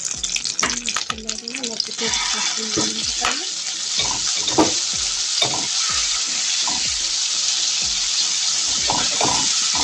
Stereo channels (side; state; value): both; identical; correlation 1.00